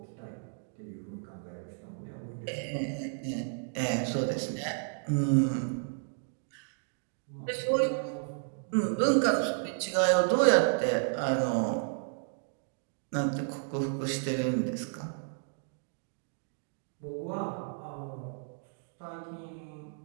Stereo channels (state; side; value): silent; left; digital silence